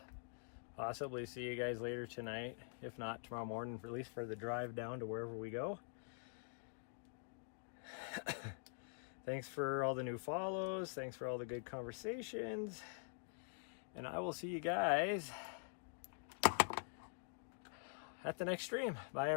possibly see you guys later tonight, if not tomorrow morning, at least for the drive down to wherever we go. Thanks for all the new follows. Thanks for all the good conversations. And I will see you guys at the next stream. Bye,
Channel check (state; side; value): silent; right; digital silence